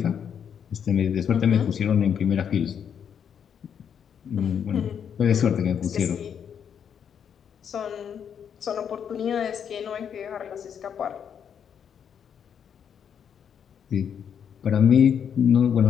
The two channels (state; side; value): quieter; right; 8.0 dB